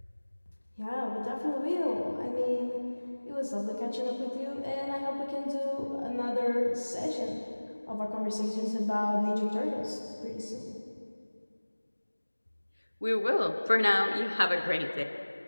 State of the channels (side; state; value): both; inverted; correlation -1.00